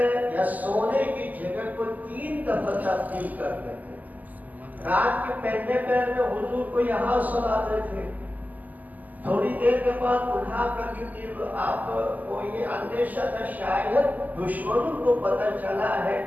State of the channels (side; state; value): left; late; 0.081 ms